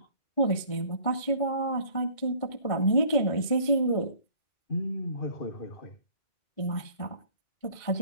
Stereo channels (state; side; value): late; right; 1.6 ms